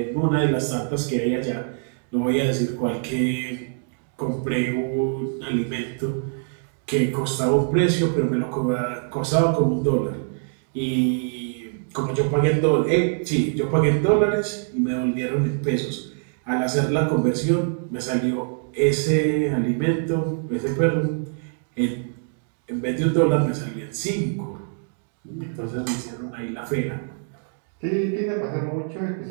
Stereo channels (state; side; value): silent; left; 60 dB below the other